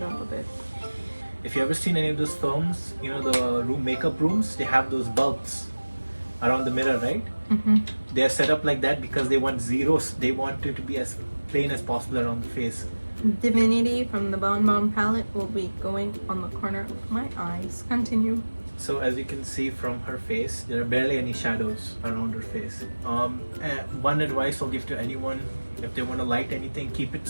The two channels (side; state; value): both; inverted; correlation -1.00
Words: up a bit. If you ever seen any of those films, you know the makeup rooms, they have those bulbs around the mirror, right? Mm-hmm. They are set up like that because they want zeros. They want it to be as plain as possible around the face. Divinity from the Bon Bon palette will be going on the corner of my eyes. Continue. So as you can see from her face, there are barely any shadows around her face. One advice I'll give to anyone, if they want to light anything, keep it